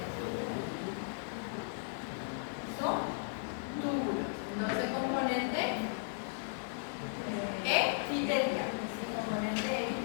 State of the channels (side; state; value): right; silent; digital silence